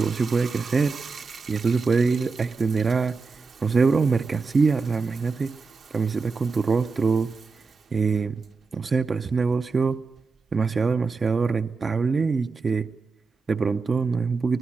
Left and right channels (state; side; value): quieter; left; 4.5 dB